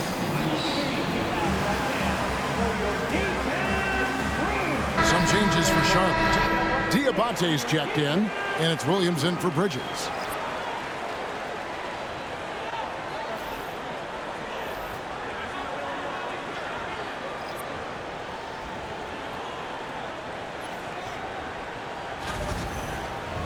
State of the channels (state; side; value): identical; both; correlation 1.00